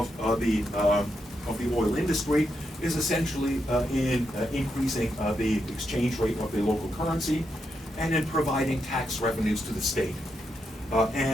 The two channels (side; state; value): both; normal; correlation 0.83